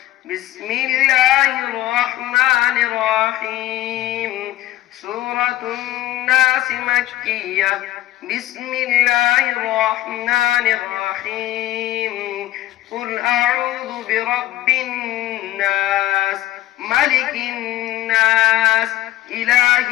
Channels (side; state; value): right; quieter; 14.8 dB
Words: بسم الله الرحمن الرحيم سورة الناس مكية بسم الله الرحمن الرحيم قل أعوذ برب الناس ملك الناس إله